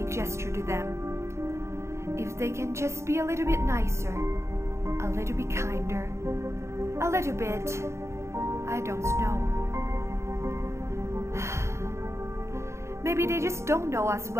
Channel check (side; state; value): left; late; 0.13 ms